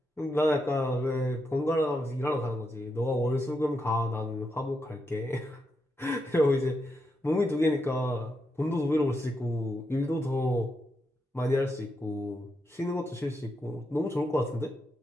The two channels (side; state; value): both; normal; correlation 0.84